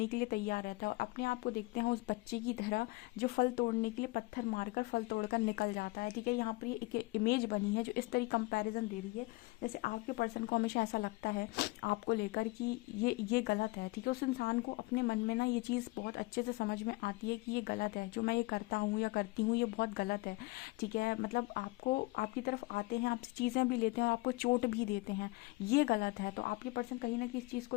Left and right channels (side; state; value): right; quieter; 23.2 dB